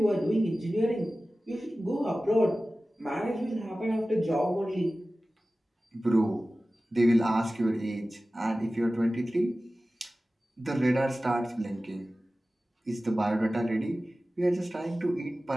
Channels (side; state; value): both; normal; correlation 0.96